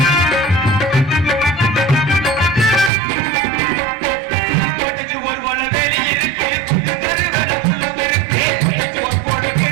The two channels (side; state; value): left; drops out; at 2.9 s